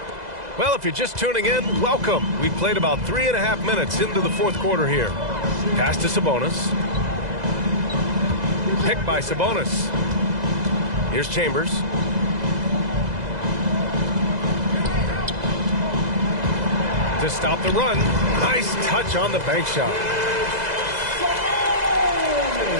Well, if you're just tuning in, welcome. We've played about 3.5 minutes into the fourth quarter here. Pass to Sabonis. Picked by Sabonis. Here's Chambers. To stop the run. Nice touch on the bank shot.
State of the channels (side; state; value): left; late; 2.0 ms